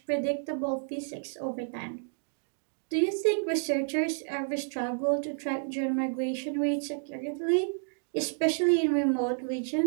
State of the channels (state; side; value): silent; left; digital silence